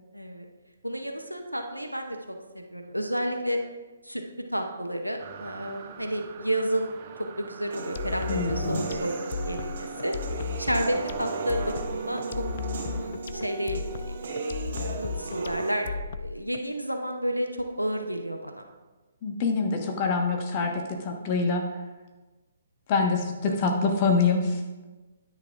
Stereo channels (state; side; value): inverted; both; correlation -0.62